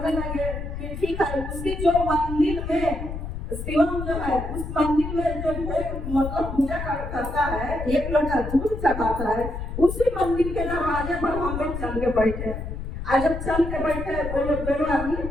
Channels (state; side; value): noise; left; rumble, 6 dB below the sound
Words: लगे कि ठीक है, उसकी जो मंदिर में शिवम जो है उस मंदिर में जो मतलब पूजा करता है, एक लोटा दूध चढ़ाता है, उसी मंदिर के दरवाजे पर हम लोग चल के बैठे। आज जब चल के बैठे वो लोग दोनों आदमी